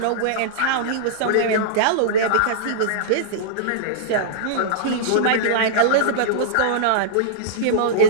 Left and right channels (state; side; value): different; both; correlation -0.03